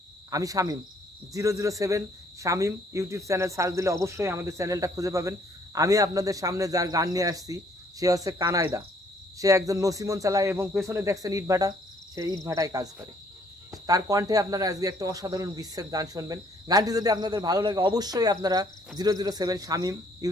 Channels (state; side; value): normal; both; correlation 0.64